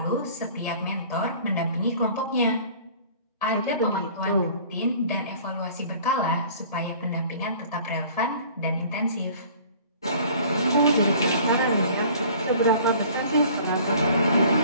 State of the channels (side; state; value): both; inverted; correlation -0.49